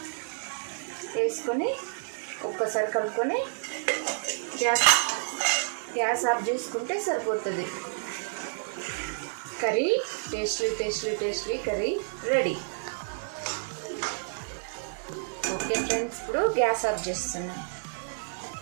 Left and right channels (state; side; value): silent; left; 58 dB below the other